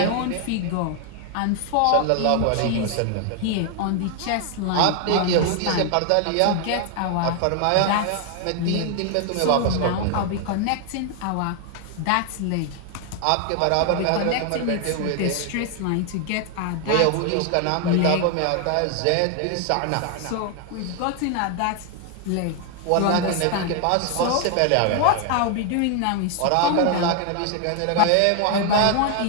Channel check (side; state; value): both; different; correlation 0.00